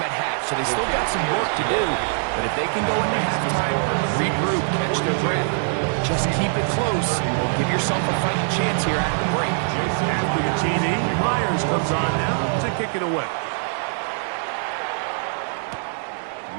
at half. So they still got some work to do, but if they can go into halftime, regroup, catch their breath, just keep it close, give yourself a fighting chance here after the break. After the TD, Myers comes on now to kick it away.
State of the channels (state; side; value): silent; left; digital silence